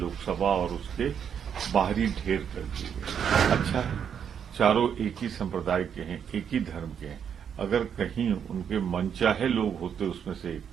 और उसके बाहरी ढेर कर दिए गए। अच्छा है, चारों एक ही संप्रदाय के हैं, एक ही धर्म के हैं। अगर कहीं उनके मनचाहे लोग होते उसमें से एक,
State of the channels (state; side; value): quieter; left; 8.0 dB